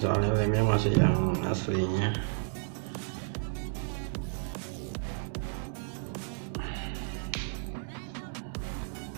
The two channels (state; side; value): silent; left; digital silence